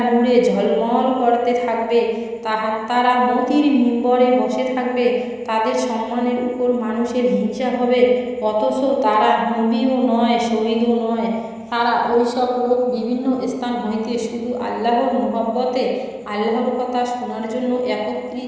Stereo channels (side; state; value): both; identical; correlation 1.00